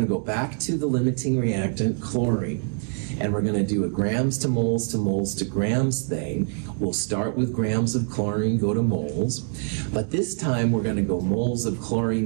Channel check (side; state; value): left; silent; 55 dB below the other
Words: to go back to the limiting reactant, chlorine, and we're going to do a grams to moles to moles to grams thing. We'll start with grams of chlorine, go to moles, but this time we're going to go moles of